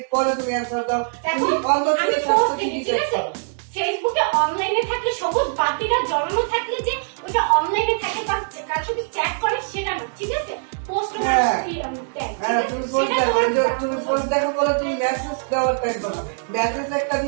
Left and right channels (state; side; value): silent; left; digital silence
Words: পরে তুমি অ্যানসার দাও। তুমি অন্য থেকে ঠিক আছে? ফেসবুকে অনলাইনে থাকলে সবুজ বাতিটা জ্বলানো থাকলে যে ওটা অনলাইনে থাকে বা কার সাথে চ্যাট করে সেটা না, ঠিক আছে? পোস্ট করে তুমি পোস্ট দেখো বলে তুমি মেসেজ দেওয়ার টাইম পাও না। মেসেজ একটা